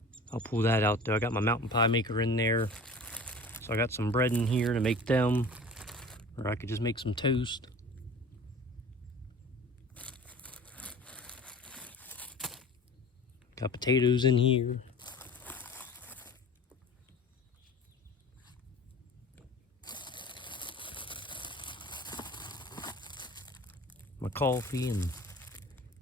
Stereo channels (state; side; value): normal; both; correlation 0.41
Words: I'll pull that out there. I got my mountain pie maker in there. So I got some bread in here to make them. Or I could just make some toast. Got potatoes in here. My coffee and